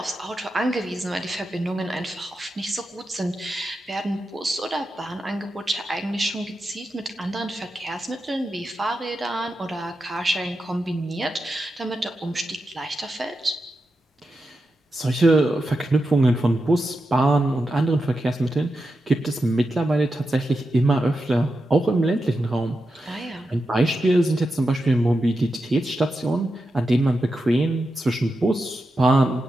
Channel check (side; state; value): both; normal; correlation 0.89